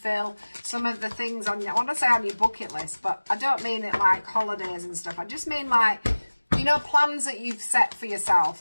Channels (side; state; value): both; inverted; correlation -1.00